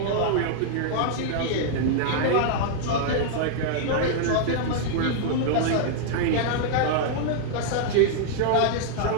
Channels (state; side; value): different; both; correlation -0.01